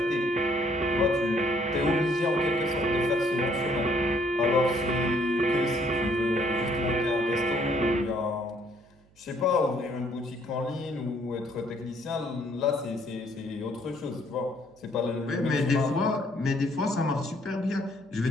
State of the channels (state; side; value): noise; right; hum, 30 dB below the sound